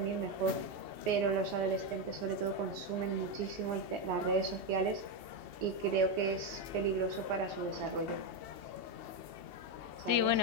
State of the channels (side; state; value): left; late; 2.7 ms